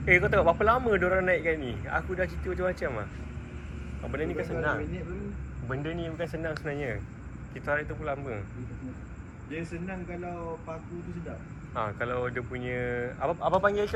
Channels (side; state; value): both; identical; correlation 1.00